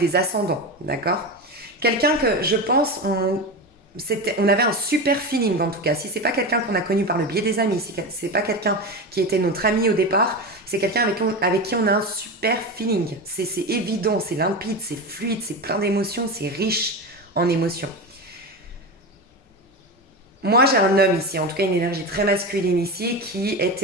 ascendants, d'accord? Quelqu'un que je pense, on avait un super feeling en tout cas. Si c'est pas quelqu'un qu'on a connu par le biais des amis, si c'est pas quelqu'un qui était notre ami au départ, c'est quelqu'un avec qui on a un super feeling. C'est évident, c'est limpide, c'est fluide, c'est plein d'émotions, c'est riche en émotions. Moi, j'ai un homme ici, en tout cas une énergie très masculine ici, qui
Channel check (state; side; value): normal; both; correlation 0.21